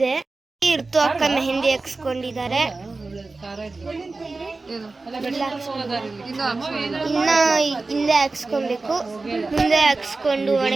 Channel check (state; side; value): quieter; left; 3.6 dB